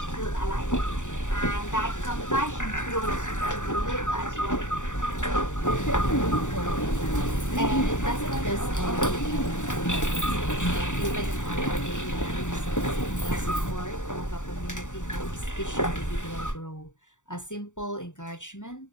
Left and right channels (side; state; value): right; late; 0.86 ms